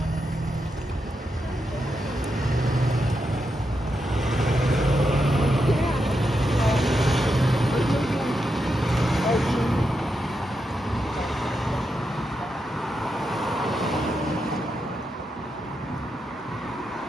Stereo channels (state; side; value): normal; both; correlation 0.85